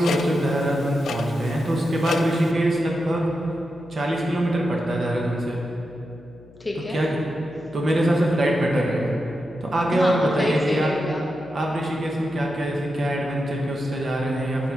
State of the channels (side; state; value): left; noise; hum, 24 dB below the sound